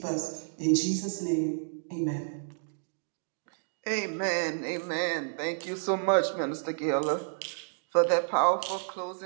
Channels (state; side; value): silent; left; digital silence